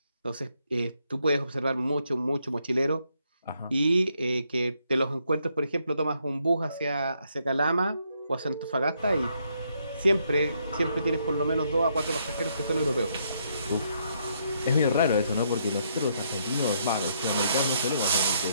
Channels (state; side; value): inverted; both; correlation -0.74